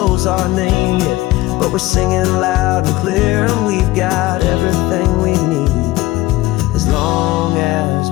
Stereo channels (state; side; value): quieter; right; 18.2 dB